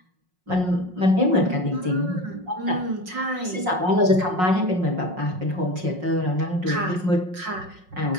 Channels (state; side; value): late; left; 5.5 ms